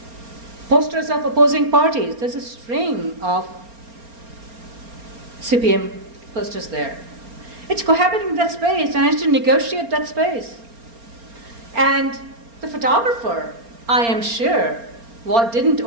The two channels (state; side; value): late; left; 4.3 ms